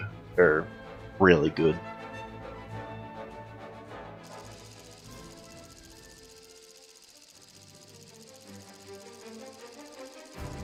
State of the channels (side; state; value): both; identical; correlation 1.00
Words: They're really good.